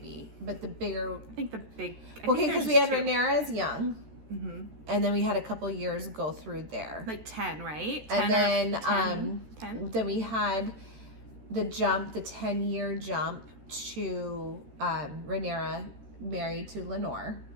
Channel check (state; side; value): late; left; 13 ms